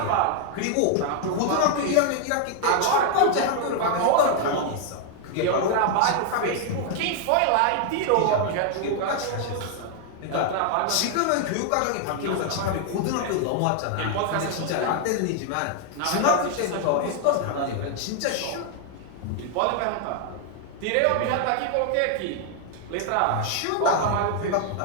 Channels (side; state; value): both; different; correlation 0.00